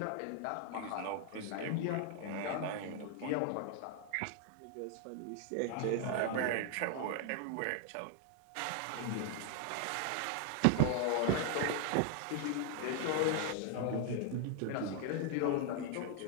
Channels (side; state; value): both; different; correlation 0.00